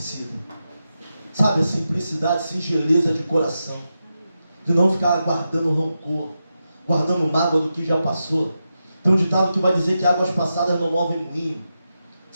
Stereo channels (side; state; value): both; inverted; correlation -0.89